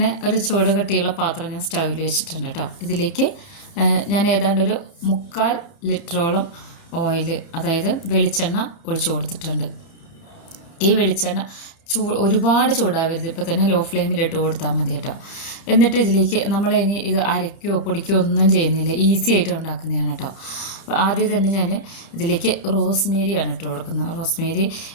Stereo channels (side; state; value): right; late; 30 ms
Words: ഒരു ചൂട് കട്ടിയുള്ള പാത്രം ഞാൻ സ്റ്റൗവിൽ വെച്ചിട്ടുണ്ട് കേട്ടോ. ഇതിലേക്ക് ഞാൻ ഏതാണ്ട് ഒരു 3/4 ലിറ്ററോളം ഓയിൽ, അതായത് വെളിച്ചെണ്ണ ഒഴിച്ചു കൊടുത്തിട്ടുണ്ട്. ഈ വെളിച്ചെണ്ണ ഒരുപാട് ചൂടാവരുത്, ഇപ്പോൾ തന്നെ ലോ ഫ്ലെയിമിലിട്ട് കൊടുത്താൽ മതി കേട്ടോ. എന്നിട്ട് ഇതിലേക്ക് നമ്മൾ ഇനി ഇത് അരയ്ക്കുകയോ പൊടിക്കുകയോ ഒന്നും ചെയ്യുന്നില്ല, ഈസി ആയിട്ട് ഉണ്ടാക്കുന്നതാണ് കേട്ടോ. അപ്പോൾ ആദ്യം തന്നെ ഞാൻ ഇതിലേക്ക് റോസ്മേരിയാണ് ഇട്ട് കൊടുക്കുന്നത്. റോസ്മേരി